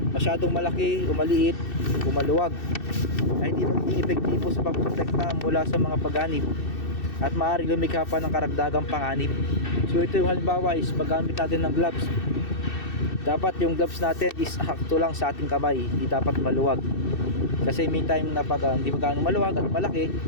masyadong malaki o maliit o maluwag, ay hindi magiging epektibo sa pagprotekta mula sa mga pagganib at maaaring lumikha pa ng karagdagang panganib. So ito yung halimbawa is paggamit natin ng gloves. Dapat yung gloves natin is hakto lang sa ating kamay, hindi dapat maluwag. Kasi may time na pag hindi magano maluwag at malaki,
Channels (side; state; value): right; late; 2.6 ms